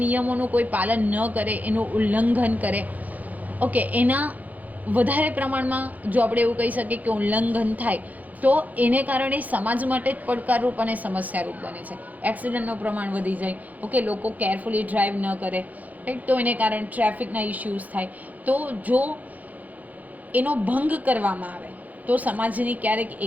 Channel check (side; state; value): left; late; 0.078 ms